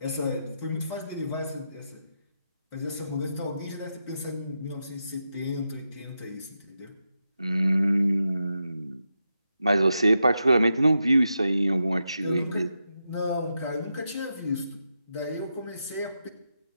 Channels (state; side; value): inverted; both; correlation -0.86